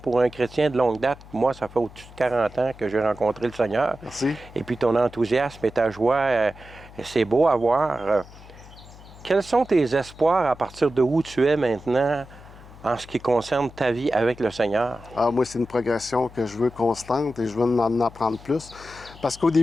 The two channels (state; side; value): noise; left; hum, 20 dB below the sound